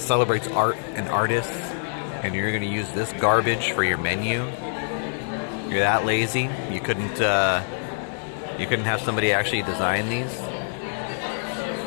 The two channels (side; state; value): right; silent; digital silence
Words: celebrates art and artists, and you're going to use this garbage for your menu. You're that lazy? You couldn't have somebody actually design these?